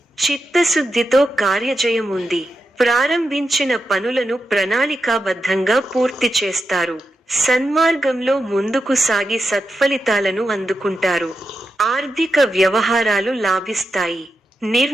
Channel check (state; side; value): normal; both; correlation 0.88